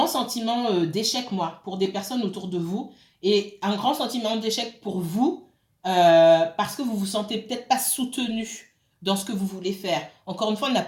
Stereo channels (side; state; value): both; identical; correlation 1.00